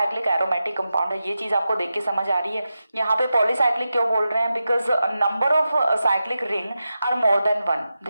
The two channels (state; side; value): inverted; both; correlation -0.91